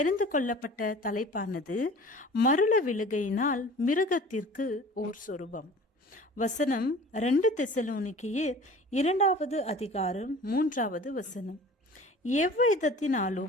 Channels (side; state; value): both; normal; correlation 0.43